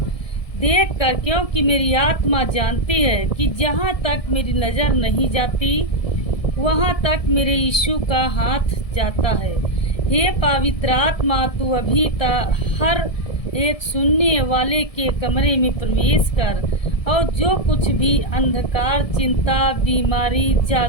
देख कर, क्योंकि मेरी आत्मा जानती है कि जहाँ तक मेरी नज़र नहीं जाती वहाँ तक मेरे यीशु का हाथ जाता है। हे पवित्र आत्मा, तू अभी तक हर एक सुनने वाले के कमरे में प्रवेश कर और जो कुछ भी अंधकार, चिंता, बीमारी,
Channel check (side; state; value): right; late; 1.7 ms